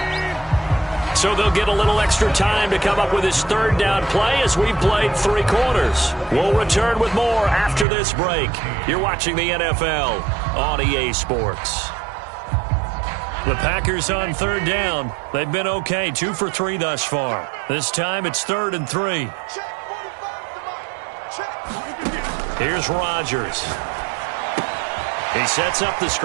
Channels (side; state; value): left; drops out; at 7.9 s